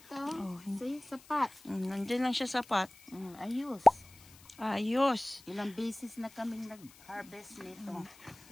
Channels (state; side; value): noise; left; hiss, 23 dB below the sound